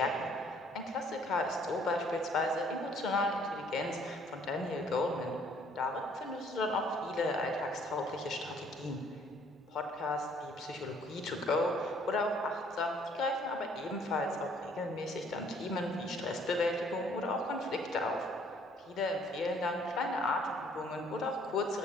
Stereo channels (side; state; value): both; normal; correlation 0.60